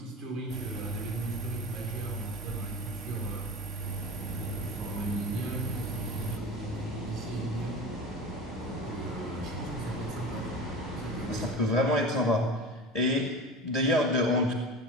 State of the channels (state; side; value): normal; both; correlation 0.32